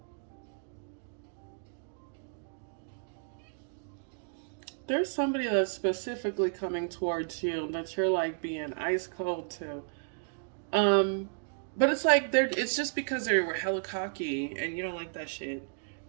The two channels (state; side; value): silent; left; digital silence